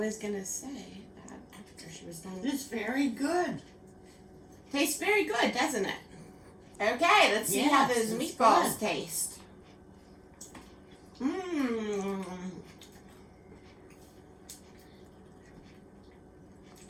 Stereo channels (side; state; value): both; identical; correlation 1.00